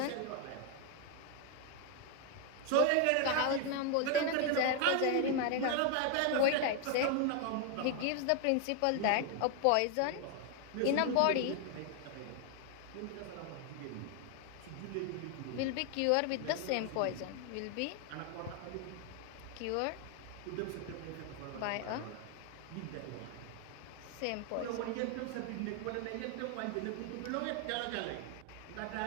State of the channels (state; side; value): different; both; correlation 0.00